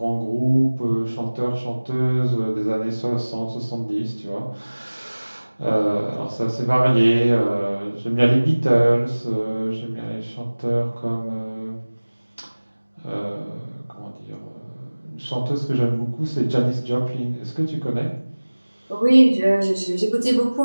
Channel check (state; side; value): inverted; both; correlation -1.00